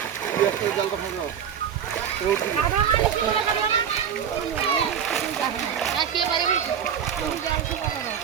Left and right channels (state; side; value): quieter; left; 8.3 dB